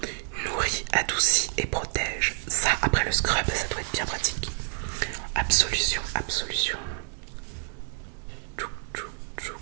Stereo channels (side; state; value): left; silent; 59 dB below the other